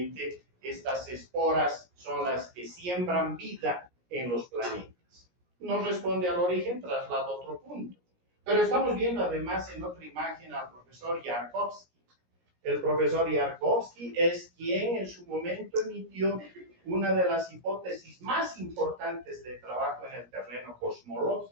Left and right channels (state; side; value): late; left; 17 ms